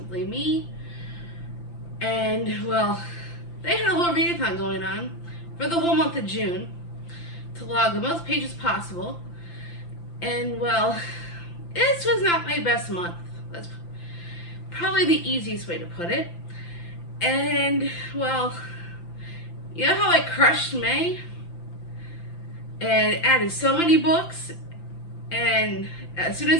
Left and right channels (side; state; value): right; late; 5.8 ms